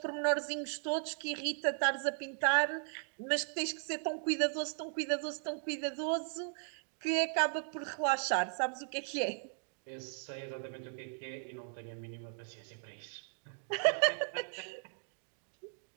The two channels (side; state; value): left; silent; 53 dB below the other